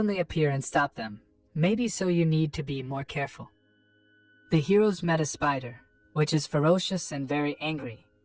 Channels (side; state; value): both; identical; correlation 1.00